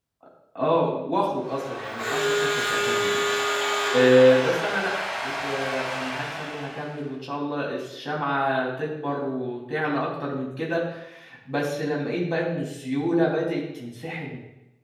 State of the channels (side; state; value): both; identical; correlation 1.00